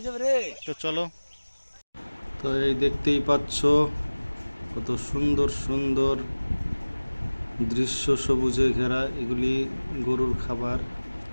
তো চলো। তো এই দেখতেই পাচ্ছ কত সুন্দর সুন্দর দৃশ্য, সবুজে ঘেরা। এগুলি গরুর খাবার,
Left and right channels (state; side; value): inverted; both; correlation -1.00